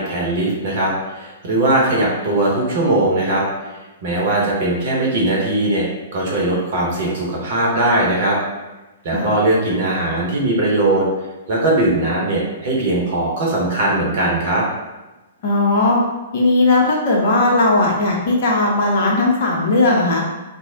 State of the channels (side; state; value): both; inverted; correlation -0.37